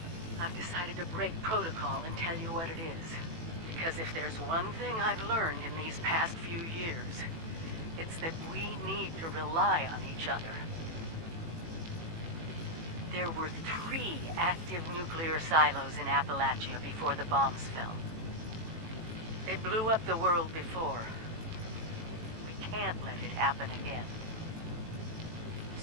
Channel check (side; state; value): left; late; 18 ms